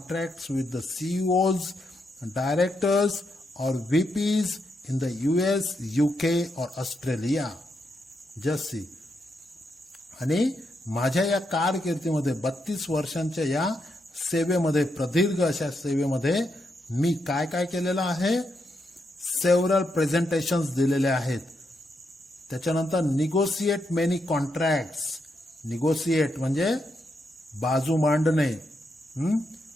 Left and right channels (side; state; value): both; normal; correlation 0.82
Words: with the CEOs, directors और VPs in the US, UK or Australia. Just see. आणि माझ्या या कारकिर्दीमध्ये 32 वर्षांच्या या सेवेमध्ये, प्रदीर्घ अशा सेवेमध्ये मी काय काय केलेलं आहे, सेव्हरल प्रेझेंटेशन्स दिलेले आहेत. त्याच्यानंतर निगोशिएट मेनी कॉन्ट्रॅक्ट्स. निगोशिएट म्हणजे बाजू मांडणे.